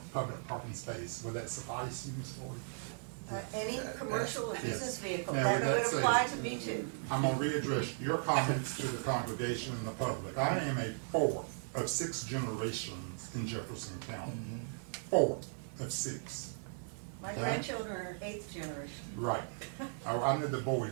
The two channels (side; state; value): left; silent; digital silence